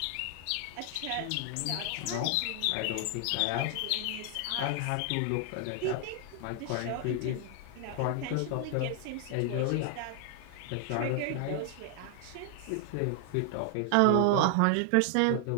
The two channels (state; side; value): different; both; correlation 0.00